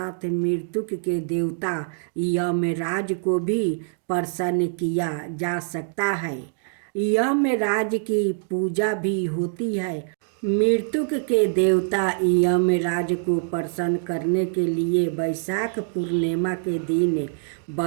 मृत्यु के देवता यमराज को भी प्रसन्न किया जा सकता है। यमराज की पूजा भी होती है। मृत्यु के देवता यमराज को प्रसन्न करने के लिए बैसाख पूर्णिमा के दिन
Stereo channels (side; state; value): left; silent; digital silence